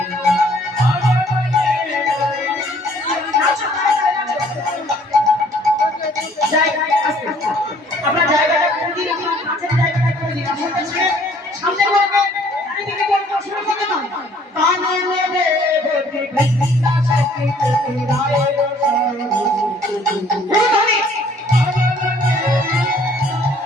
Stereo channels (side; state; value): both; normal; correlation 0.59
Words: আমরা জায়গাটা করে দিই নাচের জায়গাটা করে দিই আসলে ছেড়ে সামনে বলবে চারিদিকে বলবো শুরু করতে না পাওয়ানো রে বিনা শক্তি